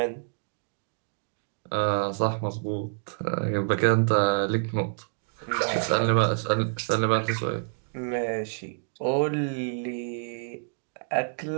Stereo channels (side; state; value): left; silent; digital silence